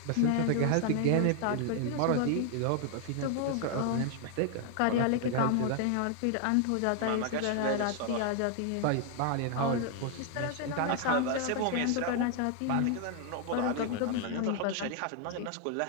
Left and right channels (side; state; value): both; different; correlation 0.00